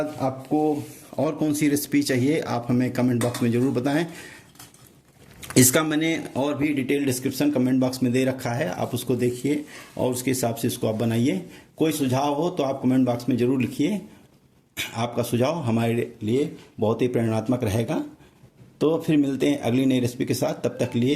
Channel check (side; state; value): both; identical; correlation 1.00